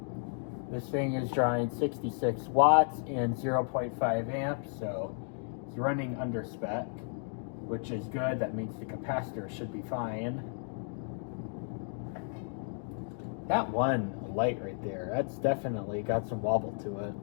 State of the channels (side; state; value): right; silent; 56 dB below the other